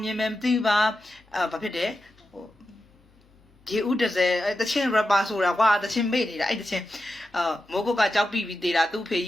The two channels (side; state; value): both; normal; correlation 0.90